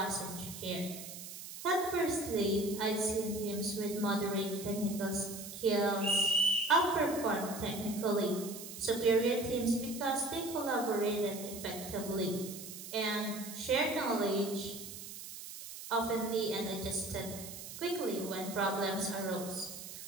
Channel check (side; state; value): right; noise; hiss, 11 dB below the sound